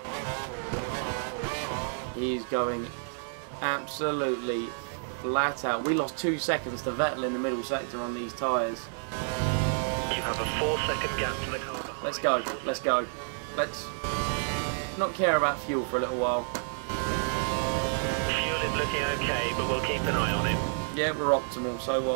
He's going absolutely flat out. We lost 2 seconds to Vettel in the middle sector on these tyres. You have a 4-second gap to the car behind. Let's go, let's go. Let's not care about fuel for a little while. Fuel is looking okay, but we'll keep an eye on it. Yeah, we're optimal, so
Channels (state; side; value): silent; left; digital silence